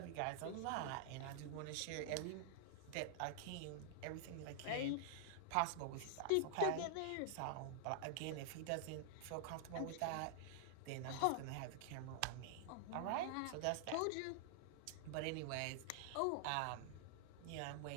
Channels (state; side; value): different; both; correlation 0.00